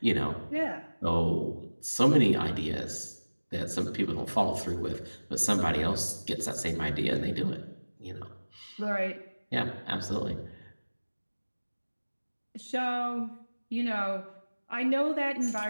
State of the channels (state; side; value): inverted; both; correlation -1.00